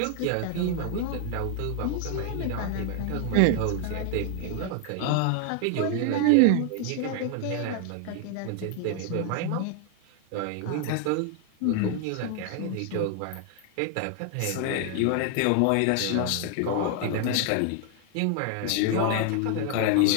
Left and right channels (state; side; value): different; both; correlation 0.00